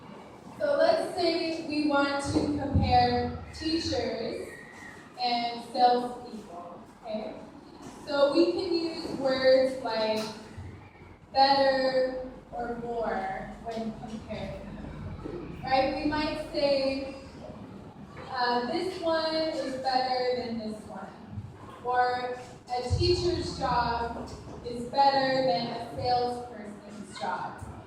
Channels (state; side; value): identical; both; correlation 1.00